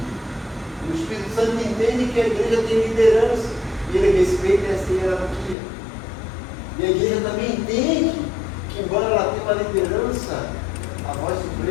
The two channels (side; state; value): right; drops out; at 5.6 s